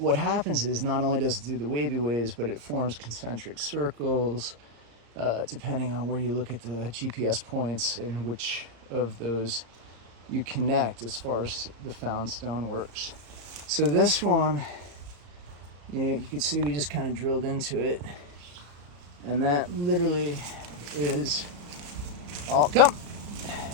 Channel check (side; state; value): left; late; 34 ms